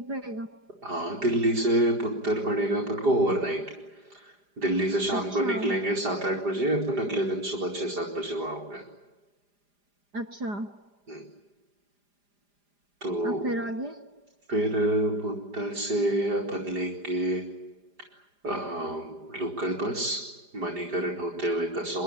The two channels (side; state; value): left; late; 4.9 ms